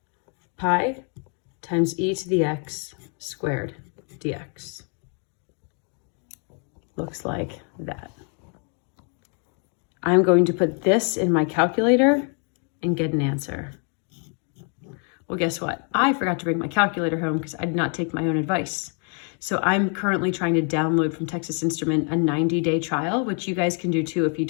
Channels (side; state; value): right; quieter; 39.8 dB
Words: pi times e to the x squared dx. Looks like that. I'm going to put this in my calculator and get an answer. Well, guess what? I forgot to bring my calculator home because I did not take my own advice. So I'm currently trying to download from Texas Instrument a 90-day trial, which you guys can do too if you